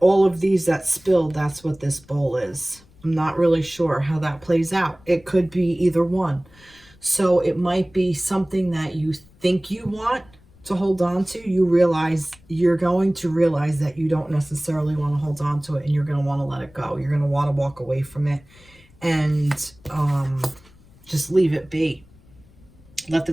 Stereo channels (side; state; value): left; noise; rumble, 27 dB below the sound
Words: all of these that spilled, that's what this bowl is. I'm not really sure how that plays out. It could be either one. So it might be something that you think you want to hold on to. You realize, you're going to realize that you don't necessarily want to hold on to it, and you're going to want to let it go. You're going to want to walk away from it and just leave it be. Let the